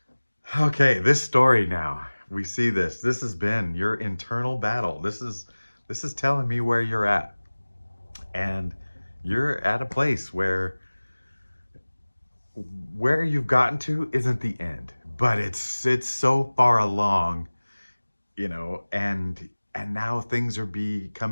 okay. This story now. We see this. This has been your internal battle. This is telling me where you're at. And you're at a place where you've gotten to isn't the end, but it's so far along, you know, and now things are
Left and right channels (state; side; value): inverted; both; correlation -1.00